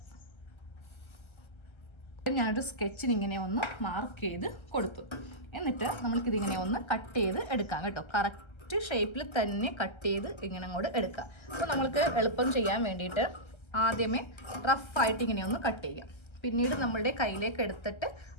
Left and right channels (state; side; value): late; right; 1.3 ms